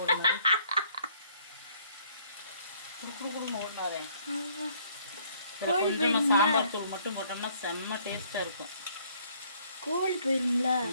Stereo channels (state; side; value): inverted; both; correlation -0.63